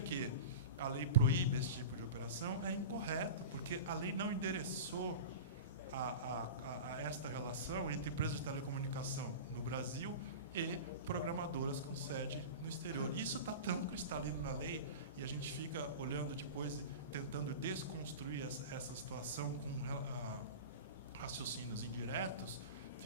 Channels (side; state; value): both; inverted; correlation -0.30